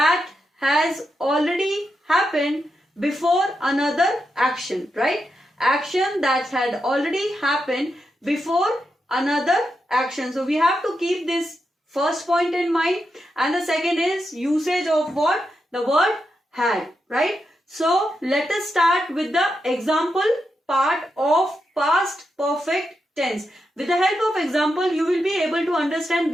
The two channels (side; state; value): both; normal; correlation 0.86